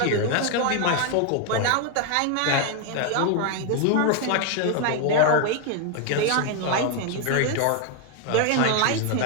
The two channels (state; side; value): different; both; correlation 0.01